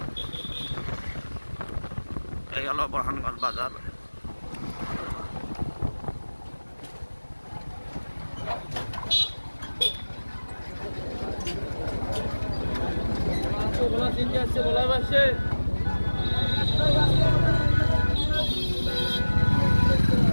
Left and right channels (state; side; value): inverted; both; correlation -1.00